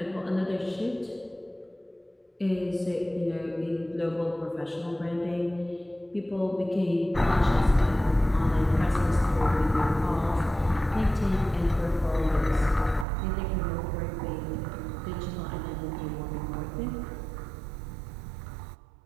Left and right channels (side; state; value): left; drops out; at 13.1 s